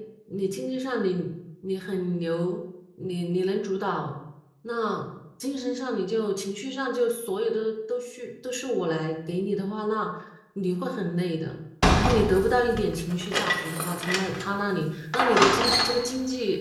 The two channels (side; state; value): both; identical; correlation 1.00